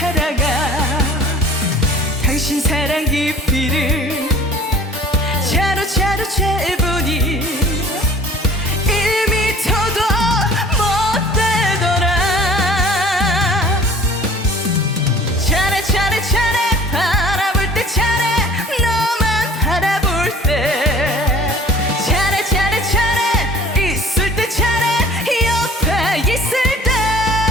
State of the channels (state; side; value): normal; both; correlation 0.48